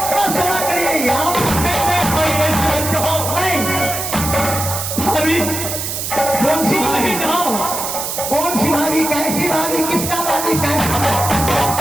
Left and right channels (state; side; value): noise; right; hiss, 4 dB below the sound